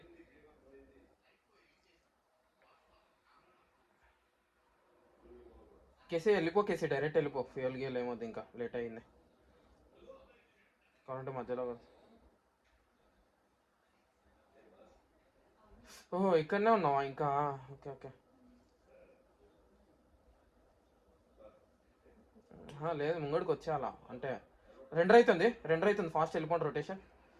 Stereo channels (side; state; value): both; identical; correlation 1.00